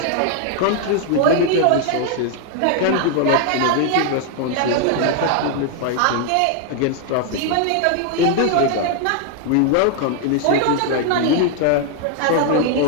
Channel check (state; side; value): different; both; correlation 0.00